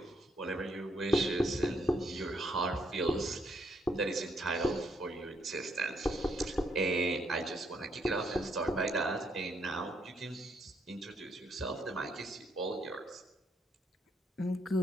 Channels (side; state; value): both; normal; correlation 0.74